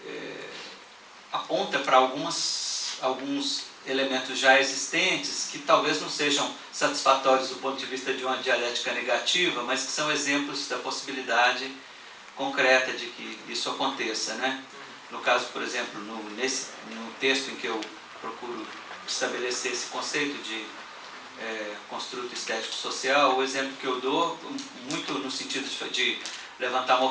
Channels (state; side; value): identical; both; correlation 1.00